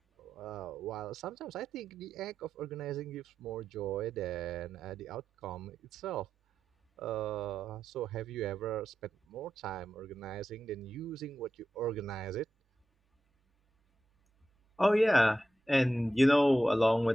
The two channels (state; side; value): normal; both; correlation 0.89